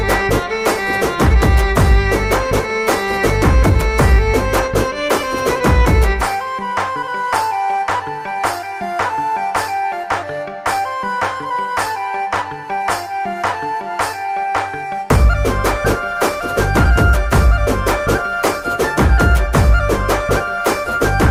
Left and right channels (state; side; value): identical; both; correlation 1.00